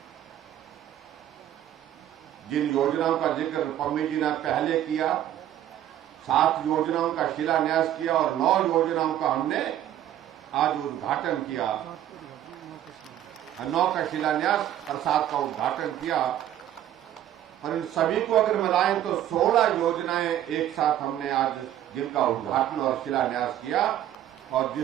जिन योजनाओं का जिक्र पम्मी जी ने पहले किया, 7 योजनाओं का शिलान्यास किया और 9 योजनाओं का हमने आज उद्घाटन किया, 9 का शिलान्यास और 7 का उद्घाटन किया। और इन सभी को अगर मिलाएं तो 16 योजनाएं एक साथ हमने आज जिनका उद्घाटन और शिलान्यास किया, और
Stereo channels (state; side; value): quieter; left; 11.9 dB